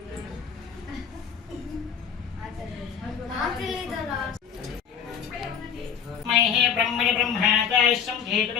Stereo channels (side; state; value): right; quieter; 7.4 dB